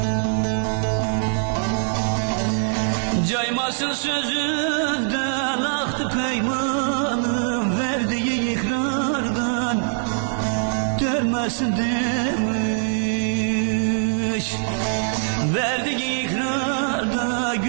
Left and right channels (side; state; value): left; silent; 61 dB below the other